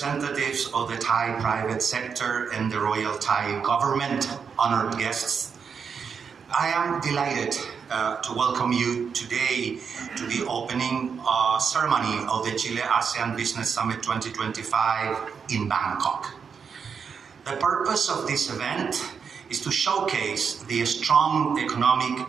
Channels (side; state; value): left; quieter; 6.3 dB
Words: of the Thai private sector and the Royal Thai government, honored guests. I am delighted to welcome you today to the opening ceremony of the Chile-ASEAN Business Summit 2025 in Bangkok. The purpose of this event is to showcase the strong